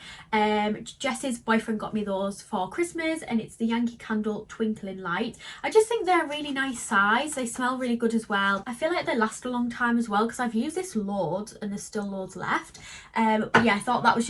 Jess's boyfriend got me those for Christmas, and it's the Yankee Candle Twinkling Light. I just think they're a really nice size. They smell really good as well. I feel like they last a long time as well, because I've used this loads and there's still loads left. But yeah, I thought that was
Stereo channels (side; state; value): both; identical; correlation 1.00